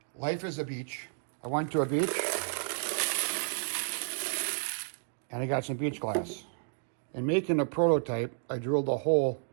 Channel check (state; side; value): silent; left; digital silence